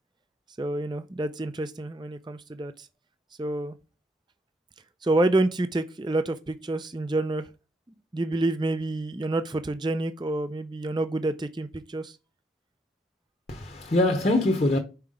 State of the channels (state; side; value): normal; both; correlation 0.73